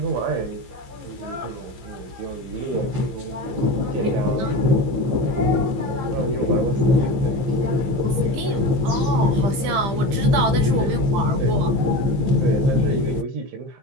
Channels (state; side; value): late; left; 15 ms